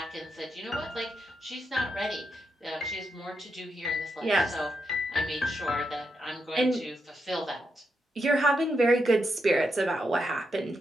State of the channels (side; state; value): both; normal; correlation 0.83